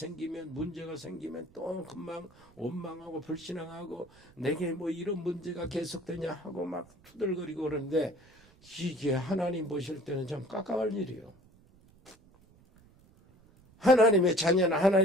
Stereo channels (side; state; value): right; noise; rumble, 27 dB below the sound